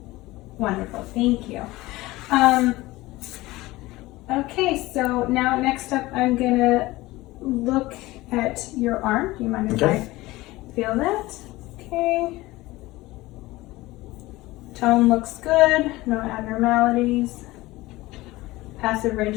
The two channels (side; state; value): right; quieter; 19.2 dB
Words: Wonderful, thank you. Okay, so now next up I'm gonna look at your arm. Do you mind if Okay. I feel that? Okay. Tone looks good, no abnormalities. Passive